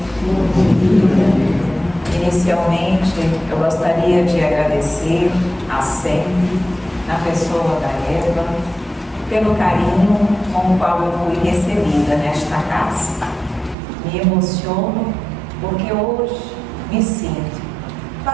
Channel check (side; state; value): left; drops out; at 13.8 s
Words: Inicialmente, eu gostaria de agradecer a SEM, na pessoa da Eva, pelo carinho com o qual eu fui recebida nesta casa. Me emociono porque hoje me sinto